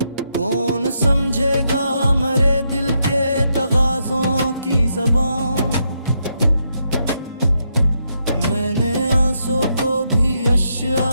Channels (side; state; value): both; inverted; correlation -0.80